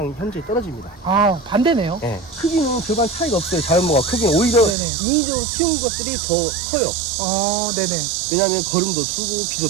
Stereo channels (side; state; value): left; drops out; at 4.8 s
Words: 현저히 떨어집니다. 반대네요. 네. 크기는 별반 차이가 없어요. 자연목과 크기는 오히려 네네. 인위적으로 키운 것들이 더 커요. 네네. 왜냐하면 거름도 주고